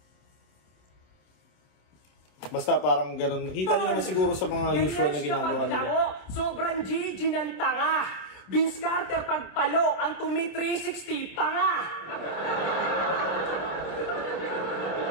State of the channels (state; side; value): late; right; 27 ms